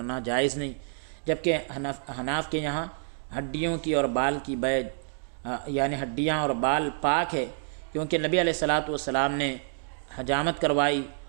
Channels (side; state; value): left; silent; digital silence